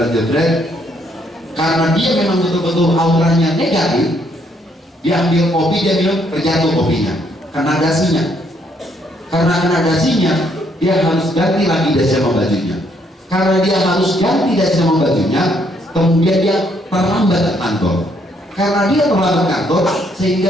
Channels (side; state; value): both; normal; correlation 0.70